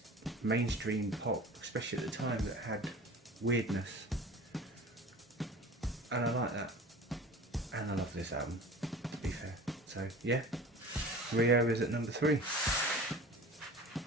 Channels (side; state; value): both; normal; correlation 0.39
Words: mainstream pop, especially at the time, that had weirdness. And I like that. And I love this album, to be fair. So yeah, Rio is at number 3.